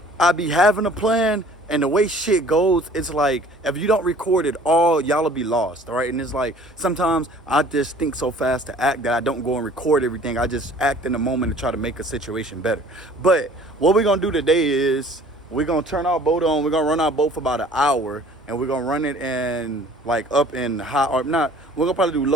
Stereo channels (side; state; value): both; normal; correlation 0.51